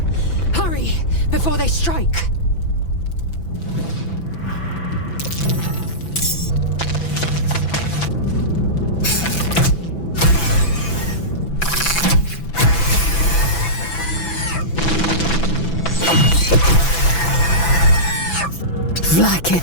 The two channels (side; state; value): right; late; 6.0 ms